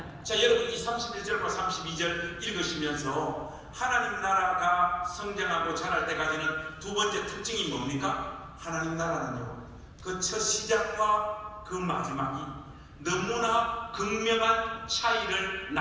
자, 여러분 이 31절과 32절 읽으시면서 하나님 나라가 성장하고 자랄 때까지는 두 번째 특징이 뭡니까? 하나님 나라는요, 그 첫 시작과 그 마지막이 너무나 극명한 차이를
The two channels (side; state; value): both; identical; correlation 1.00